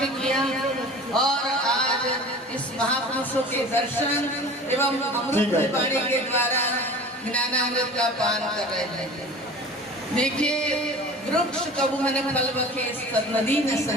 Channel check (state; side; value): normal; both; correlation 0.40